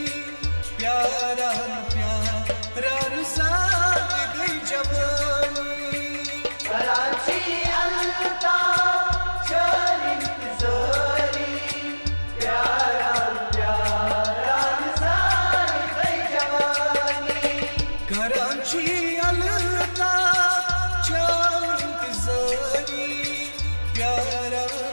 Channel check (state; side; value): inverted; both; correlation -1.00